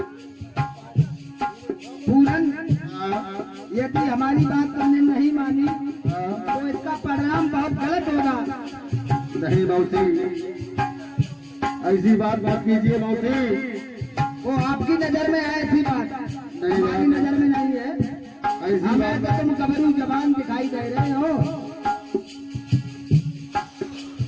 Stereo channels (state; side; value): identical; both; correlation 1.00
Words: पूरन यदि हमारी बात तुमने नहीं मानी तो इसका परिणाम बहुत गलत होगा। नहीं मौसी, ऐसी बात मत कीजिए मौसी। वो आपकी नजर में है ऐसी बात, नहीं हमारी नजर में नहीं है। ऐसी हमें तो बात तुम गबरू जबान दिखाई दे रहे हो।